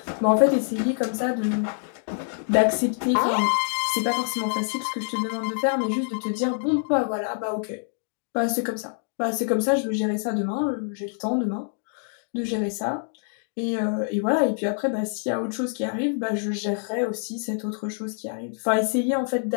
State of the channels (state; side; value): silent; right; 61 dB below the other